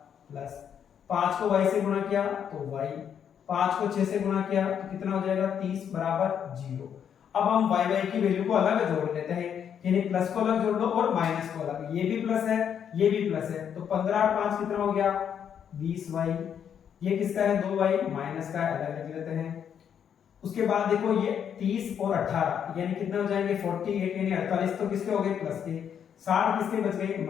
प्लस 5 को y से गुणा किया तो y, 5 को 6 से गुणा किया तो कितना हो जाएगा 30 बराबर 0। अब हम y की वैल्यू को अलग जोड़ लेते हैं, यानी प्लस को अलग जोड़ दो और माइनस को अलग, ये भी प्लस है ये भी प्लस है तो 15 और 5 कितना हो गया 20y, ये किसका है 2y माइनस का है अलग लिख लेते हैं। उसके बाद देखो ये 30 और 18 यानी कितने हो जाएंगे 48 यानी 48 तो किसके हो गए प्लस के, 60 किसके बच गए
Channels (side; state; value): right; quieter; 8.4 dB